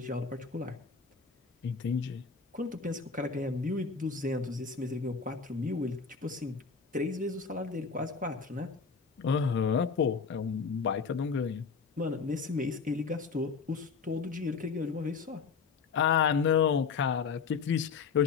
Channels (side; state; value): right; quieter; 5.4 dB